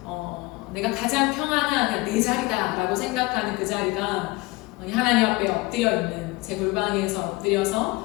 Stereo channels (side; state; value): right; quieter; 22.5 dB